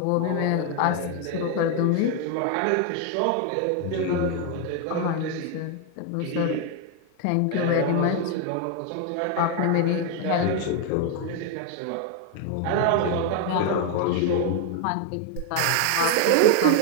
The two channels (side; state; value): both; different; correlation 0.01